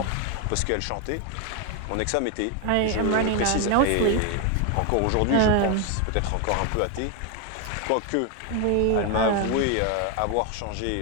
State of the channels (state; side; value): different; both; correlation 0.01